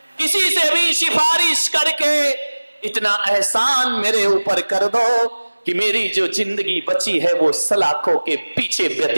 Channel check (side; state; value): both; inverted; correlation -1.00